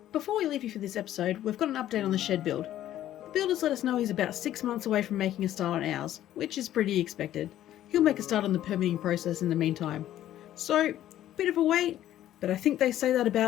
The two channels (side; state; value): right; quieter; 12.6 dB